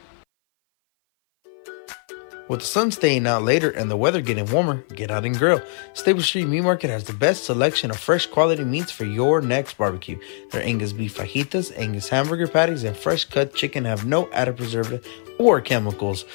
With the sun staying out later and the weather getting warmer, get out and grill. Stable Street Meat Market has the best selection of fresh quality meats for your next barbecue. Their Angus beef fajitas, Angus hamburger patties, and fresh cut chicken have no added preservative or chemicals.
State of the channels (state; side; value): silent; right; 57 dB below the other